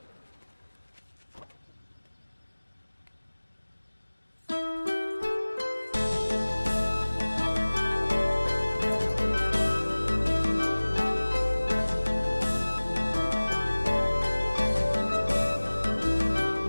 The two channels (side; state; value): both; inverted; correlation -1.00